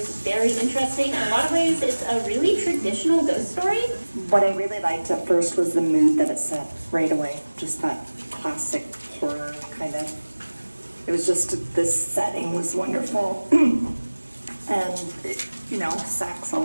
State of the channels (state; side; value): inverted; both; correlation -1.00